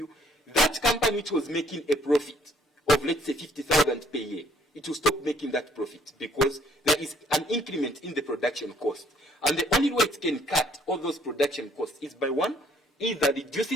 That company which was making a profit of, let's say, 50,000 per year, it will stop making that profit because there is an increment in the production cost. And the only way it can cut all those production costs is by one, either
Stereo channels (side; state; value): both; normal; correlation 0.63